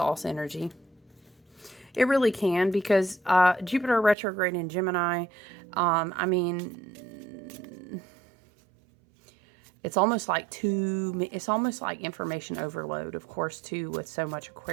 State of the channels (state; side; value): drops out; left; at 4.2 s